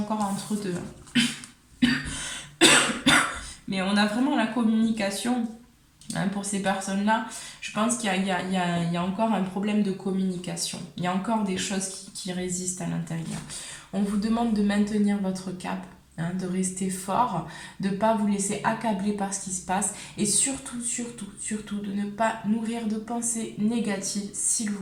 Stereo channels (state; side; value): identical; both; correlation 1.00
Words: entre deux. Mais on a vraiment la communication. Hein, pour ces personnes-là, je pense qu'il y a encore un problème de communication. Il y a encore des choses qui résistent à l'intérieur. On vous demande de maintenir votre cap. hein, de rester fort, de ne pas vous laisser accabler par ce qui se passe et surtout, surtout, surtout de ne pas nourrir de pensées négatives, s'il